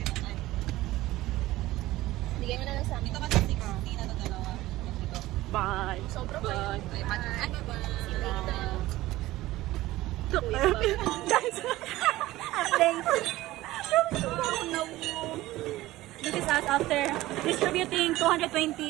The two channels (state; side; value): quieter; left; 17.1 dB